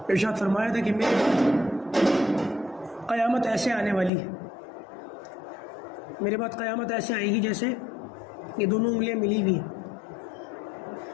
ارشاد فرمایا تھا کہ میرے بعد قیامت ایسے آنے والی ہے، میرے بعد قیامت ایسے آئے گی جیسے یہ دونوں انگلیاں ملی ہوئی ہیں۔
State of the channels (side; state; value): right; drops out; at 4.1 s